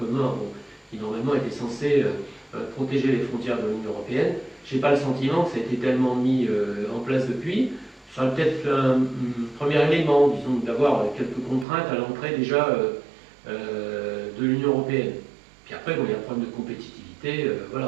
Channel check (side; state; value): left; drops out; at 11.7 s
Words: bon, qui normalement était censé protéger les frontières de l'Union européenne. Je n'ai pas le sentiment que ça a été tellement mis en place depuis. Ça serait peut-être un premier élément, disons, d'avoir quelques contraintes à l'entrée déjà de l'Union européenne. Puis après, bon, il y a un problème de compétitivité,